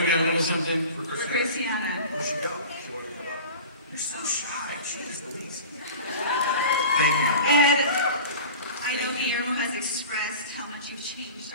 we got a little something. For Christmas. Christiana. Where'd she go? She wanted to come up. You're so shy. She is the least. Thank you. Ed, I know Guillermo has expressed how much you've changed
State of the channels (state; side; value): inverted; both; correlation -0.37